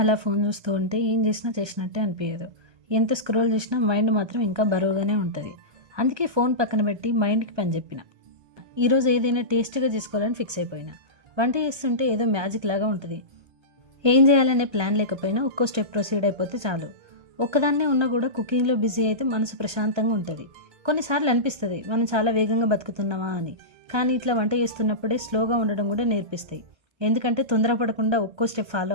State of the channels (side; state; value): left; late; 1.3 ms